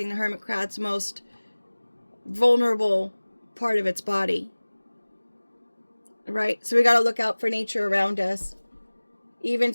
the hermit crab's most vulnerable part of its body. Right? So we got to look out for nature around us. Even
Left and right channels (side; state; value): both; inverted; correlation -1.00